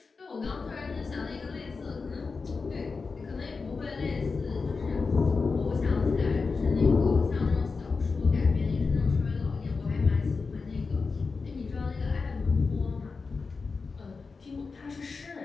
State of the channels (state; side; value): quieter; right; 4.5 dB